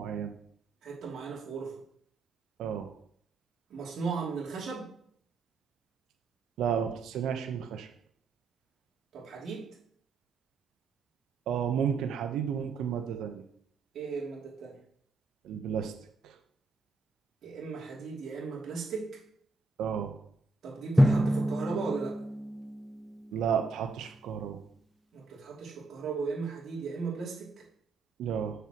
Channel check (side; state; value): left; quieter; 3.5 dB